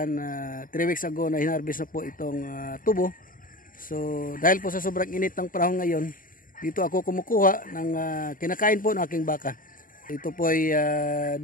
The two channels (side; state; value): right; late; 0.40 ms